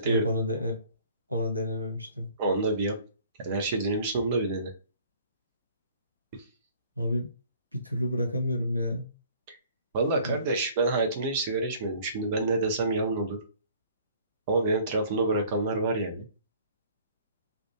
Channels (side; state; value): both; inverted; correlation -0.54